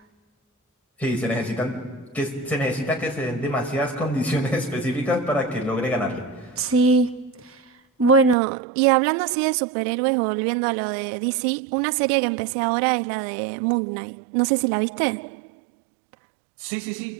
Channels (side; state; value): left; drops out; at 8.3 s